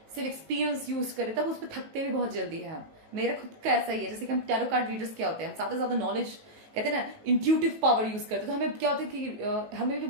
सिर्फ एक्सपीरियंस यूज करें, तब उस पर थकते भी बहुत जल्दी है हम. मेरा खुद का ऐसा ही है. जैसे कि हम टैरो कार्ड रीडर्स क्या होते हैं, हम ज्यादा से ज्यादा नॉलेज कहते हैं ना इंट्यूटिव पावर यूज करते हैं, तो हमें क्या होता है कि हमें भी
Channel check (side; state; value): left; late; 18 ms